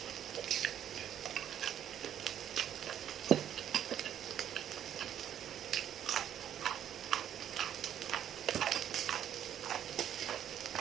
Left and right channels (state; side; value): quieter; left; 10.1 dB